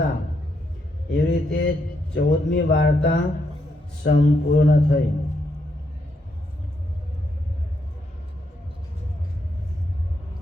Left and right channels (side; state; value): both; normal; correlation 0.78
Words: એવી રીતે 14મી વાર્તા સંપૂર્ણ થઈ।